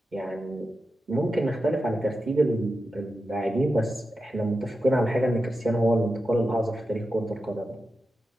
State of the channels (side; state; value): both; normal; correlation 0.90